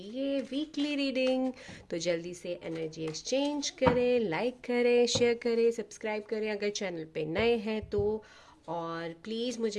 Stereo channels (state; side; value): identical; both; correlation 1.00